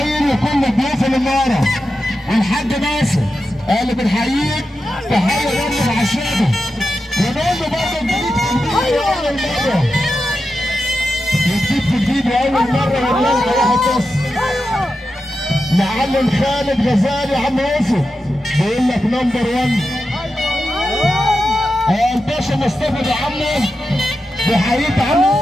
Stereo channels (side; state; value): both; normal; correlation 0.90